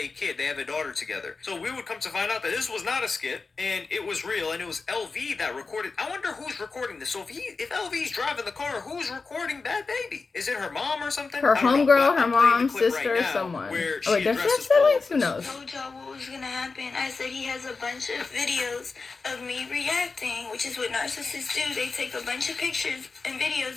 kid. They have a daughter together. So we would come to find out that this was not a skit, and it was real, and it was LV that recorded. I wonder who's recording this. So if LV's driving the car, who's recording Bad Baby? Is it her mom or something? Her homegirl, her mom, sister, someone. Oh, wait, does she have siblings? Who knows? I told y'all what was gonna happen. I said he has a bunch of videos of me reacting, which is what narcissists do. They take a bunch of pictures and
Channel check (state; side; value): quieter; right; 4.3 dB